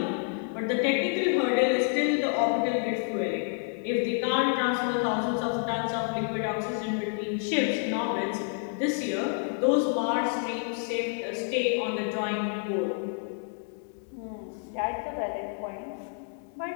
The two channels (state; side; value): silent; right; 59 dB below the other